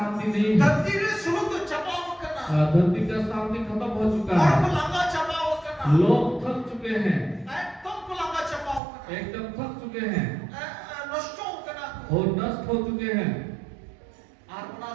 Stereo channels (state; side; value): drops out; left; at 8.8 s